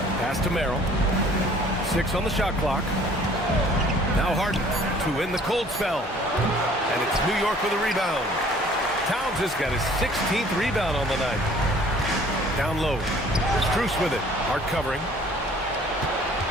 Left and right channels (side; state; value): both; normal; correlation 0.54